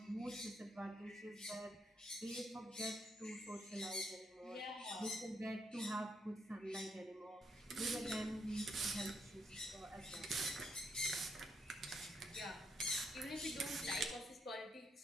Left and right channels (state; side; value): normal; both; correlation 0.76